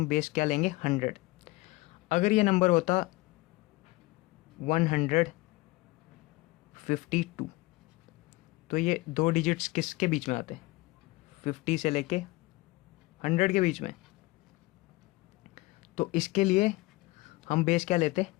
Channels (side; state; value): right; quieter; 21.6 dB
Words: बेस क्या लेंगे? 100। अगर ये नंबर होता 152 तो ये 2 डिजिट्स किसके बीच में आते हैं? 50 से लेके 100 के बीच में। तो इसके लिए हम बेस क्या लेते?